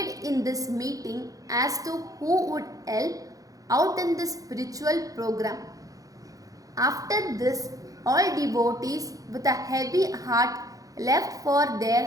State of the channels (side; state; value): left; late; 0.17 ms